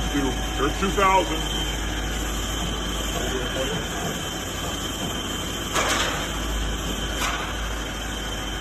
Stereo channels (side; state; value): both; identical; correlation 1.00